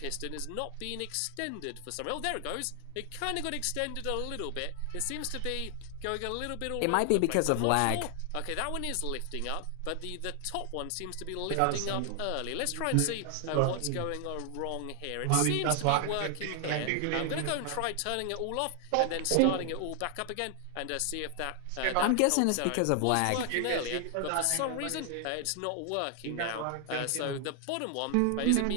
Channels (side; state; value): both; different; correlation 0.00